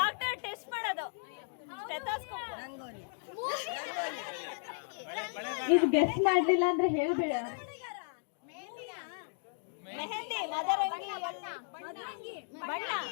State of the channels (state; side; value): silent; right; digital silence